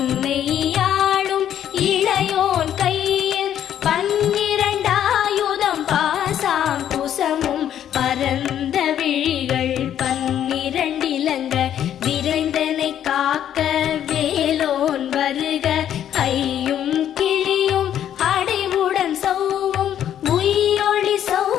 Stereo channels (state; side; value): quieter; right; 10.3 dB